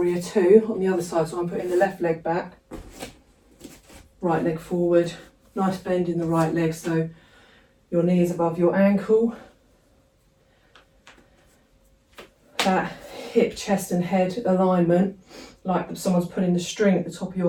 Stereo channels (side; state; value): both; identical; correlation 1.00